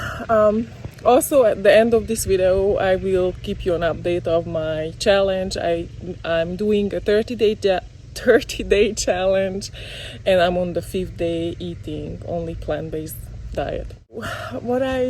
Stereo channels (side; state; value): both; identical; correlation 1.00